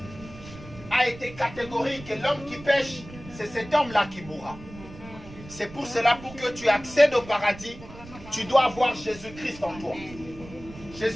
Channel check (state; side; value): noise; right; rumble, 16 dB below the sound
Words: a été catégorique. L'homme qui pêche, c'est cet homme-là qui mourra. C'est pour cela, pour que tu accèdes au paradis, tu dois avoir Jésus-Christ en toi.